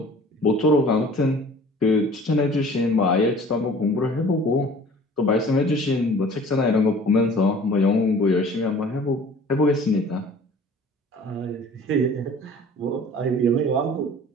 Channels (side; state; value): both; normal; correlation 0.48